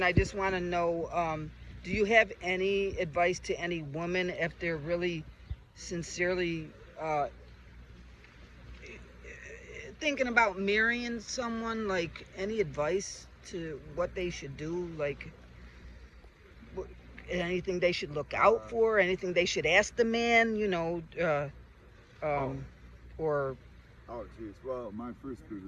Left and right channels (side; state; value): both; identical; correlation 1.00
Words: I just want to know, do you have any advice to any woman if they're really sincerely thinking about marrying someone? Like, any advice to what they should do? Like, anything they should look out for? Anything they should ask the man? You know, or Oh, geez. Well, my first bit of